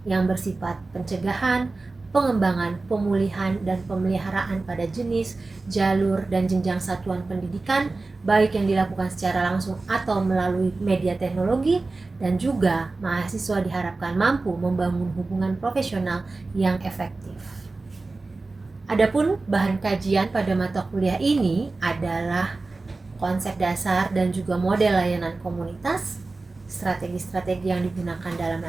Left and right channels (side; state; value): left; quieter; 3.5 dB